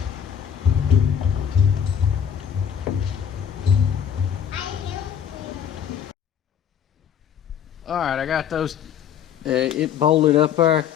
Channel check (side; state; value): right; quieter; 8.5 dB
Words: I help you. Alright, I got those it bolted up there.